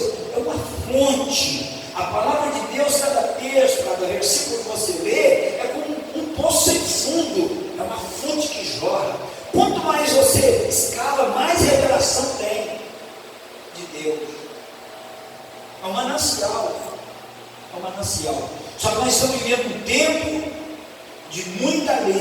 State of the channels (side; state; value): both; identical; correlation 1.00